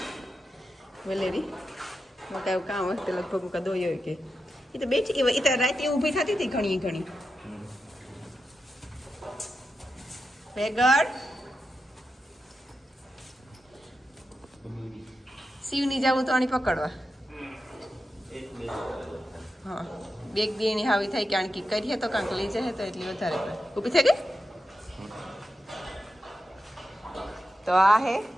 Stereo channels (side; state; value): both; normal; correlation 0.89